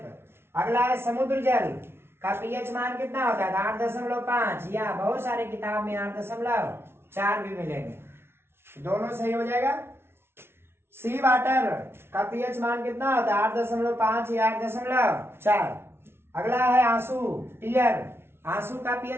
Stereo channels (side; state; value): left; late; 0.12 ms